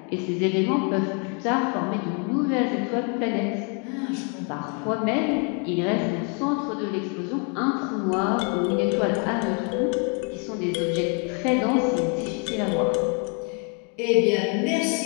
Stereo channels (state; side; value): quieter; right; 36.7 dB